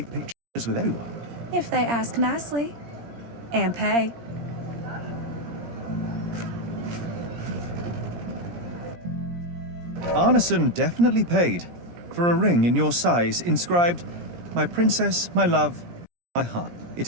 pictures with everyone? If they ask nicely. And pay. Arneson definitely paid for a ring in your size inscribed, "My princess, my love, my heart." It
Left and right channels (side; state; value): left; late; 17 ms